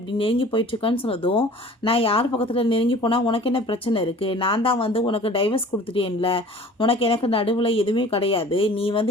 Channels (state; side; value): normal; both; correlation 0.46